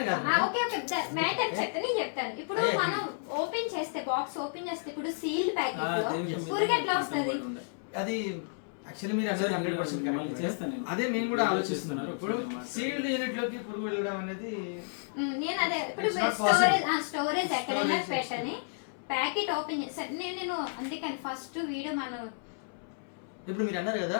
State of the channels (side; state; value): right; silent; 57 dB below the other